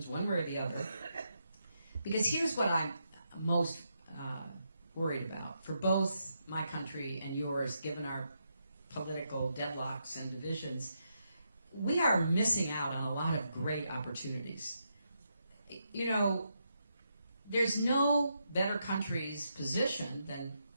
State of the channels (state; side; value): inverted; both; correlation -0.81